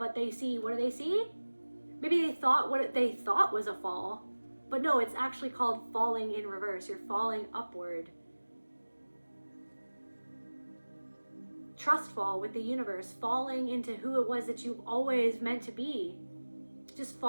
they see, what do they see? Maybe they thought what they thought was a fall, but no, it's actually called falling in reverse. You're falling upward. Trust fall with the universe, falling into who it was that you've always meant to be. Just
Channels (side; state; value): both; inverted; correlation -1.00